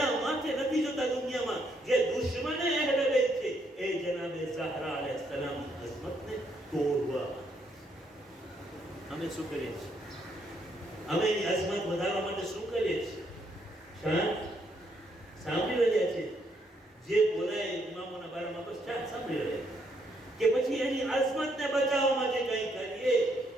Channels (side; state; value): both; normal; correlation 0.73